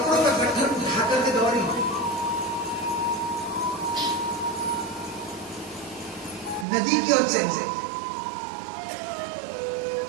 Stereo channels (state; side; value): drops out; left; at 6.7 s